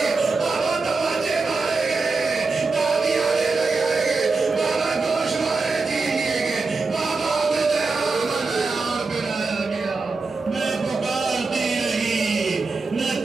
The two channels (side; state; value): left; quieter; 4.1 dB